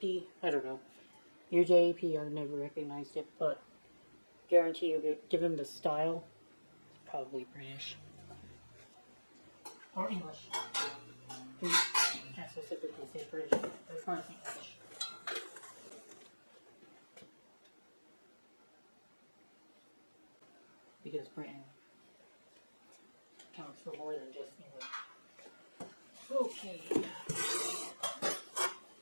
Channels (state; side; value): inverted; both; correlation -1.00